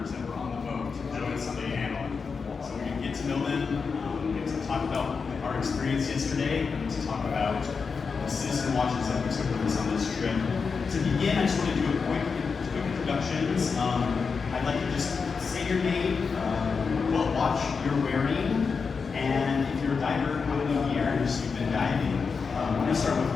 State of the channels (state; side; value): quieter; right; 5.3 dB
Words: that were on the boat to join us on the panel. So we can get to know them, get to talk about our experience yesterday, and to talk about the citizen watches that we took with us on this trip. To begin, I just want to do a quick introductions. I'd like to just say your name, what watch you're wearing, and if you're a diver, how many years you've been diving. We're going to start